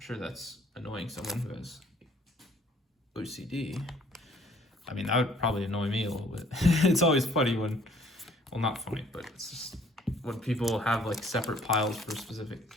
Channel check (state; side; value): normal; both; correlation 0.59